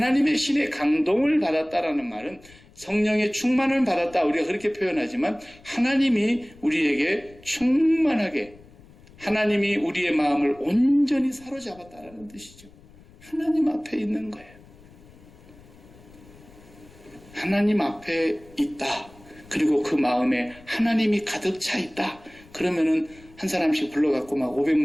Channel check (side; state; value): left; noise; rumble, 24 dB below the sound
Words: 신의 감동을 받았다라는 말은 성령의 충만을 받았다 우리가 그렇게 표현하지만 하나님이 우리에게 충만하게 하나님이 우리의 마음을 온전히 사로잡았다라는 뜻이죠. 하나님 앞에 있는 거예요. 하나님 앞에 있다. 그리고 그 마음에 하나님이 가득 차 있다. 그러면은 한 사람씩 불러갖고 막